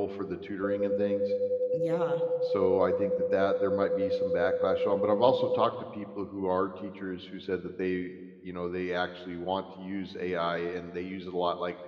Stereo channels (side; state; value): both; identical; correlation 1.00